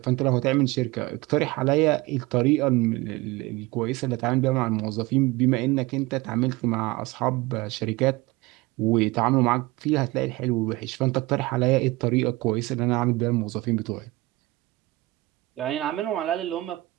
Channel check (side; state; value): left; quieter; 20.7 dB